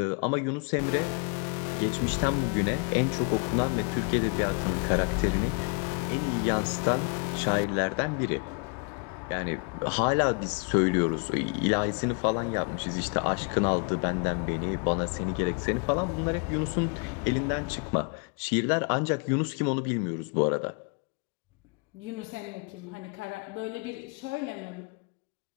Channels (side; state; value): right; quieter; 36.2 dB